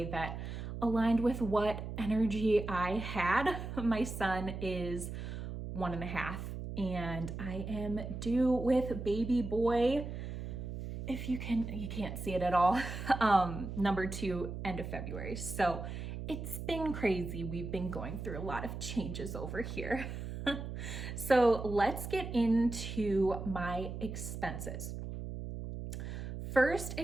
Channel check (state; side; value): noise; right; hum, 7 dB below the sound